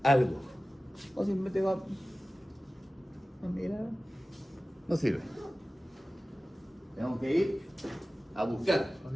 algo. O simplemente va a mirar. No sirve. Tengo que ir a buscar.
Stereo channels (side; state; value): both; normal; correlation 0.96